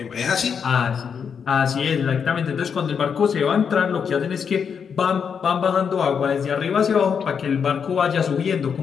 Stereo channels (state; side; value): quieter; right; 6.8 dB